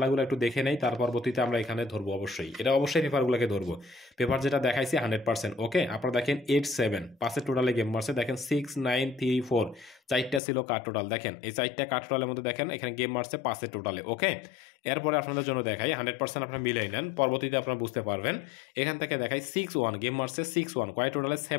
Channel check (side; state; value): right; drops out; at 10.4 s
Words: একটু দেখে নেই। তার পরবর্তীতে আমরা এখানে ধরবো অবশ্যই। এটা অবশ্যই পেপারগুলোকে ধরবো। পেপার যেটা দেখাইছি 100% ওকে? আপনারা দেখেন 8-7 পাঁচের টোটালে গেম মারছে। দেখেন 6, 9, 3, 4 4টা ছিল কার টোটাল। দেখেন এই 4টা কার টোটালের মধ্যে দেখেন এখানে গেম মারছে 5 এর টোটালে ওকে। এরপরে আপনাদের জন্য দেখাই 100% আপনারা মিলাই নেন, পরবর্তীতে আপনারা বুঝতে পারবেন। এখান থেকে দেখাই 6-1 গেম মারছে 6-1 কয় টোটালে